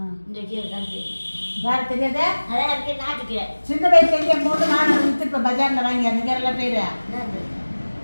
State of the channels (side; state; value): both; inverted; correlation -1.00